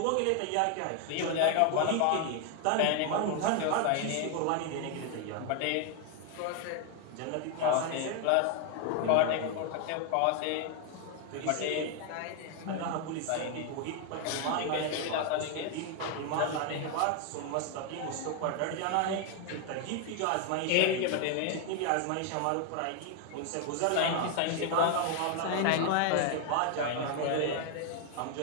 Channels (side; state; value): both; different; correlation 0.01